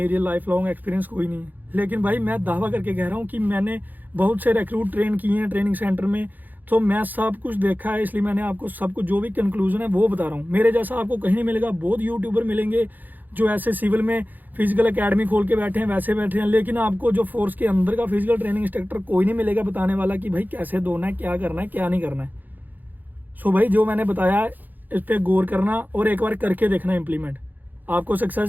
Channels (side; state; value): left; late; 0.085 ms